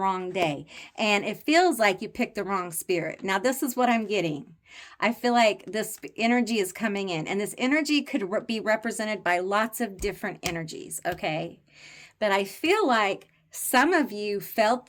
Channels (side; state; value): both; identical; correlation 1.00